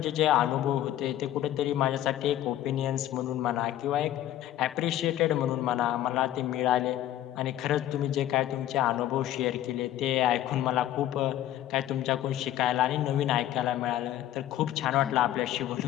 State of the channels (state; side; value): quieter; right; 12.7 dB